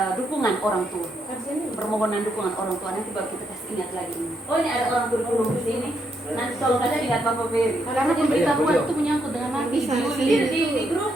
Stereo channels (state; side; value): normal; both; correlation 0.77